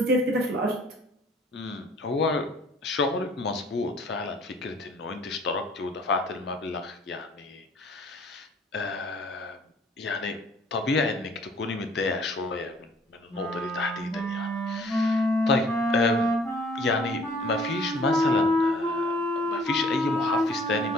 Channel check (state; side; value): normal; both; correlation 0.55